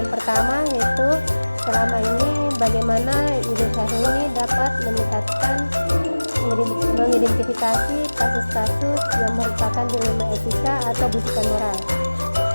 pertama yaitu, selama ini bagaimana Ibu Syafroni dapat meningkatkan mengidentifikasi kasus-kasus yang merupakan dilema etika atau bisikan moral?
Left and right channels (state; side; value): inverted; both; correlation -1.00